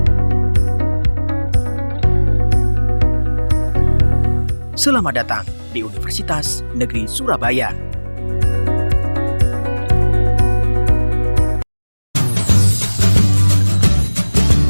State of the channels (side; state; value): both; inverted; correlation -1.00